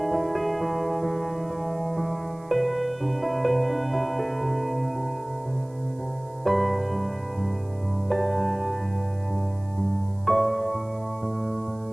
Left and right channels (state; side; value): noise; right; hiss, 30 dB below the sound